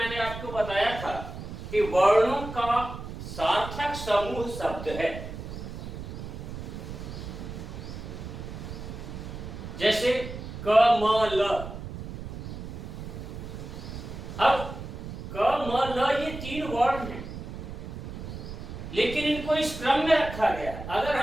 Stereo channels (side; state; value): right; noise; rumble, 9 dB below the sound